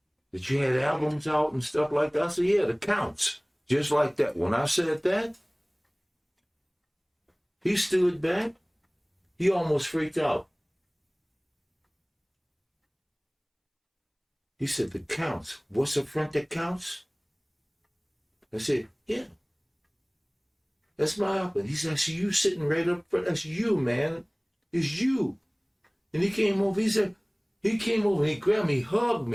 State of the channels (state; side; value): identical; both; correlation 1.00